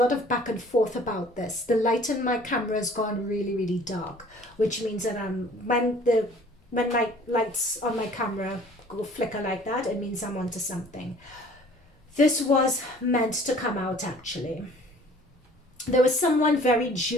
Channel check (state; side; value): normal; both; correlation 0.52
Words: of back and forth about this. The light in my camera has gone really, really dark, which means that when my lights on my camera go flicker like that, it means I'm onto something. This was meant to come out, actually. There was someone very